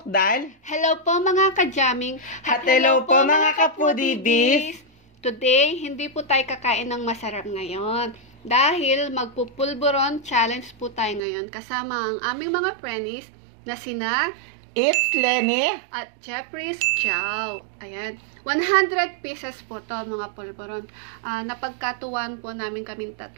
Hello po mga ka-jamming. At hello po mga kapudibis. Today, hindi po tayo kakain ng masarap ngayon. Dahil magpupulburon challenge po tayo ngayon kasama ang aming mga friends na sina It's Lenny at Jeffrey's Chow. Ayan. 100 pieces po to mga pulburon. Napagkatuwan po namin kaming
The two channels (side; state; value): left; drops out; at 11.2 s